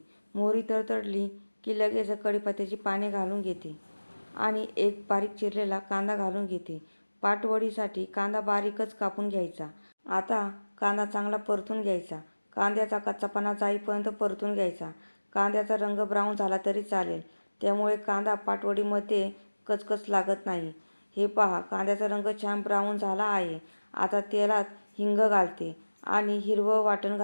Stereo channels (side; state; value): both; inverted; correlation -1.00